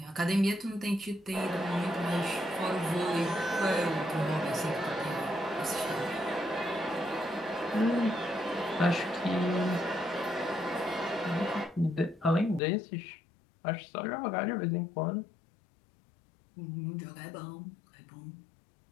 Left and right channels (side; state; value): right; drops out; at 12.6 s